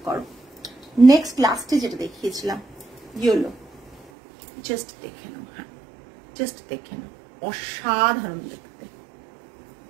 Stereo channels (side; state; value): left; drops out; at 4.1 s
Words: করো। নেক্সট লাস্টে যেটা দেখিয়েছিলাম ইয়েলো, জাস্ট দেখে নাও, হ্যাঁ জাস্ট দেখে নাও, অসাধারণ দেখতে।